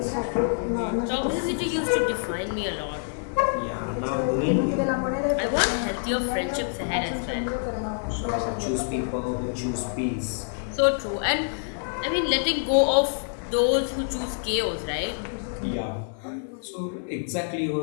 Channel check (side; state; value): right; silent; 61 dB below the other